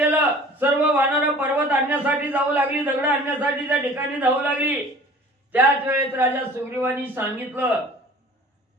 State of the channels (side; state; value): both; normal; correlation 0.46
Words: सर्व वानर पर्वत आणण्यासाठी जाऊ लागली दगड आणण्यासाठी त्या ठिकाणी जाऊ लागली. त्याच वेळेत राजा सुग्रीवानी सांगितलं